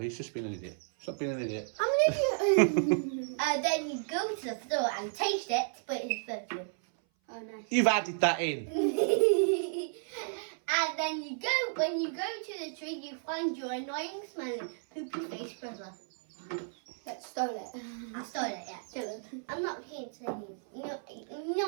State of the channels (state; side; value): silent; left; 56 dB below the other